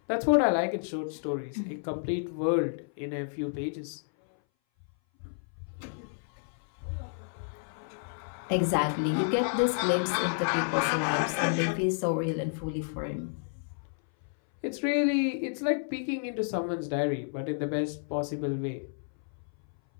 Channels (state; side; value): silent; right; 57 dB below the other